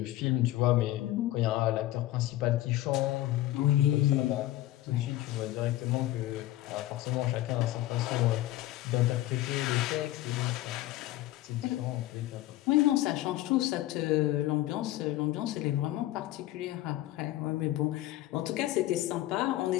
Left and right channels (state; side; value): quieter; right; 15.5 dB